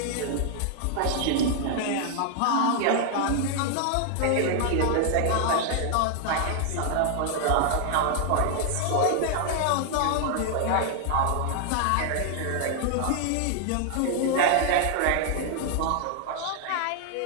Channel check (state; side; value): different; both; correlation 0.00